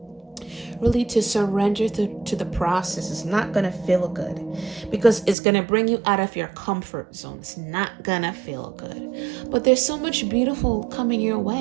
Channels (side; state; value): left; drops out; at 5.4 s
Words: Really to surrender to the process. It's not going to feel good because it's going to bring you out of your comfort zone. It's not going to feel good. But there's so much beautiful coming your